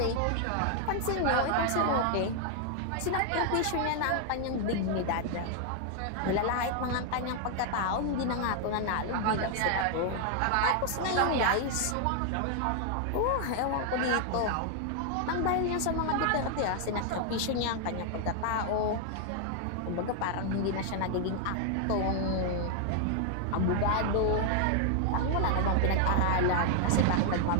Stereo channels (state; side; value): different; both; correlation 0.00